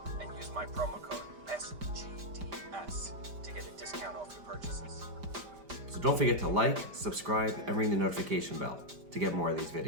and use my promo code SGDS to get a discount off your purchases. So don't forget to like, subscribe, and ring the notification bell to get more of these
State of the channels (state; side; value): late; left; 5.0 ms